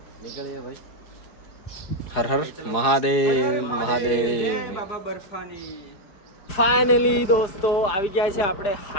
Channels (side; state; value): right; late; 4.9 ms